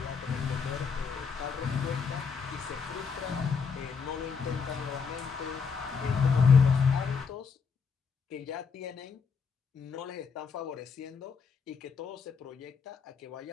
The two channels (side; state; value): right; quieter; 5.7 dB